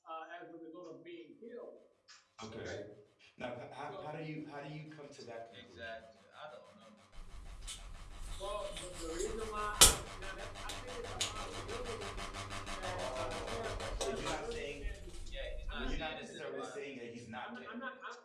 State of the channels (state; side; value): identical; both; correlation 1.00